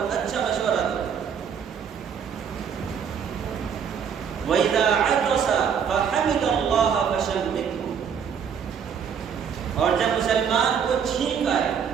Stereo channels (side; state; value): left; quieter; 7.4 dB